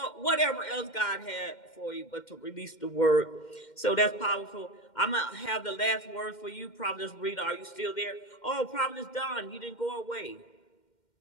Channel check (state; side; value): late; right; 2.1 ms